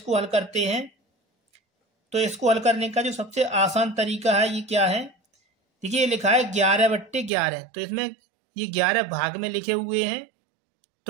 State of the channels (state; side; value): drops out; left; at 7.3 s